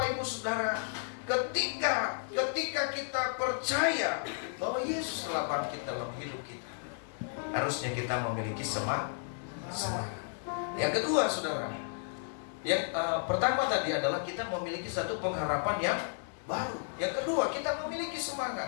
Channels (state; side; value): silent; right; 56 dB below the other